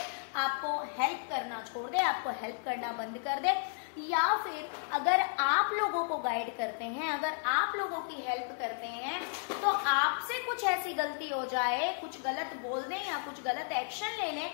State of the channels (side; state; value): right; silent; digital silence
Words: आपको हेल्प करना छोड़ दे, आपको हेल्प करना बंद कर दे। या फिर अगर आप लोगों को गाइड करते हैं, अगर आप लोगों की हेल्प करते हैं, तो आपसे कुछ ऐसी गलती हो जाए, कुछ गलत बोल दें या कुछ गलत एक्शन ले लें